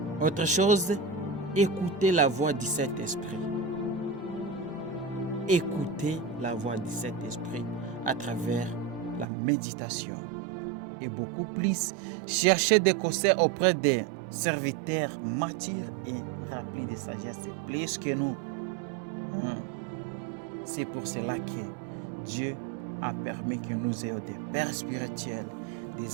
Autre chose, écoutez la voix du Saint-Esprit. Écoutez la voix du Saint-Esprit à travers la méditation. Et beaucoup plus, cherchez des conseils auprès des serviteurs matures et remplis de sagesse, plus que nous. C'est pour cela que Dieu a permis que nous ayons des pères spirituels,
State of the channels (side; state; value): left; drops out; at 9.2 s